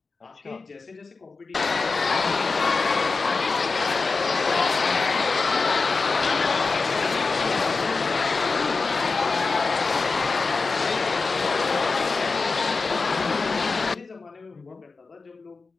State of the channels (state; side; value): quieter; right; 4.2 dB